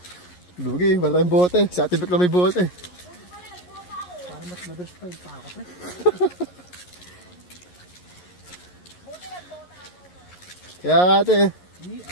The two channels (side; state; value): right; late; 11 ms